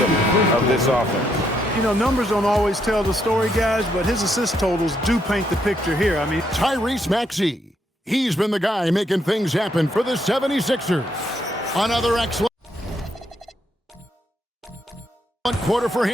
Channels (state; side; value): normal; both; correlation 0.75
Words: of this offense. You know, numbers don't always tell the story, guys, but his assist totals do paint the picture here. I mean, Tyrese Maxey. He's been the guy making things happen for the 76ers. Another excellent quarter for